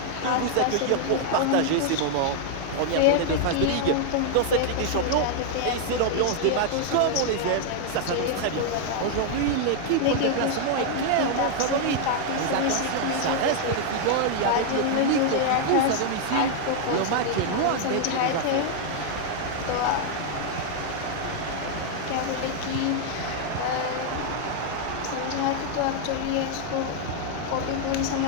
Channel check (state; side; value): different; both; correlation 0.00